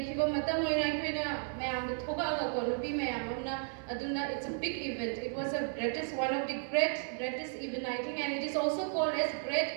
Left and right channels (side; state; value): left; silent; 55 dB below the other